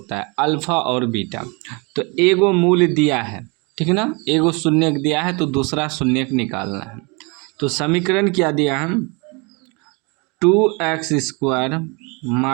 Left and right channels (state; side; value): quieter; left; 30.1 dB